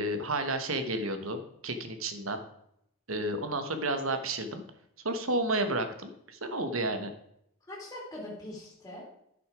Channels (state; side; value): normal; both; correlation -0.08